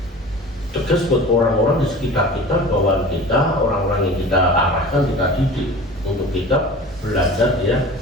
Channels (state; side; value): normal; both; correlation 0.39